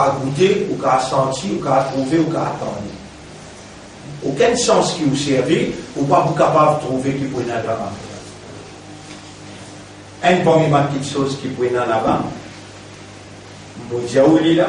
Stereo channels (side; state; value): both; identical; correlation 1.00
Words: goûter, vous pouvez sentir, vous pouvez trouver, vous pouvez attendre. Aucun sens qui vous servait, ou pas vous capable de trouver qui peut être là-bas. Une première petite chose qui peut être là-bas, vous dites où il est